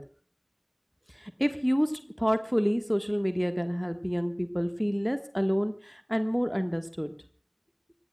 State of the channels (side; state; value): both; identical; correlation 1.00